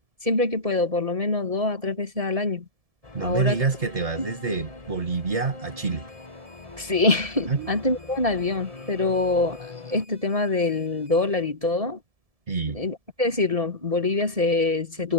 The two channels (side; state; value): left; late; 1.7 ms